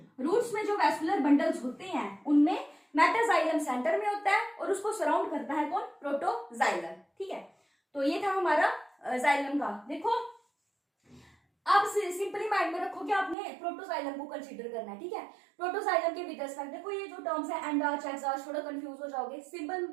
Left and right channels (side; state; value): left; drops out; at 13.4 s